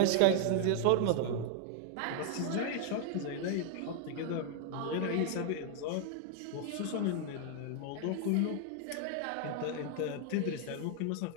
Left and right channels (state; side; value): different; both; correlation 0.00